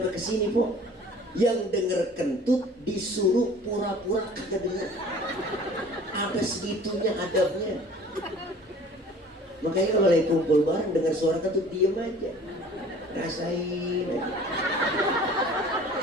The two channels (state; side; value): normal; both; correlation 0.48